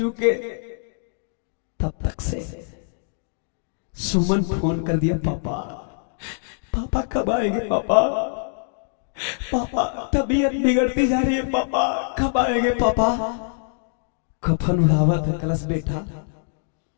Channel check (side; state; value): right; silent; digital silence